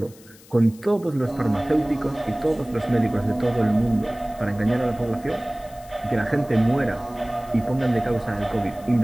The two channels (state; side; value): noise; left; hiss, 24 dB below the sound